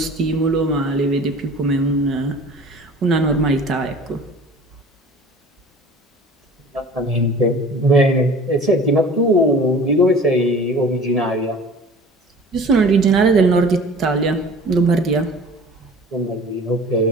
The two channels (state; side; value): normal; both; correlation 0.44